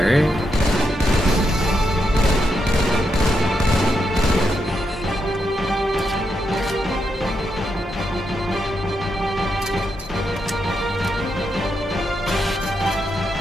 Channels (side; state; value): both; normal; correlation 0.83